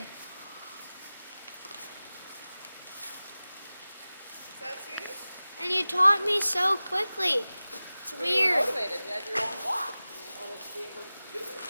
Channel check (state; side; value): inverted; both; correlation -0.97